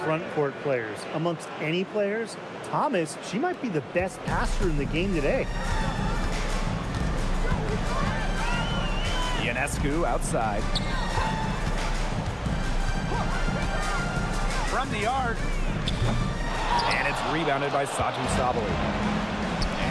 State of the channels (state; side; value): identical; both; correlation 1.00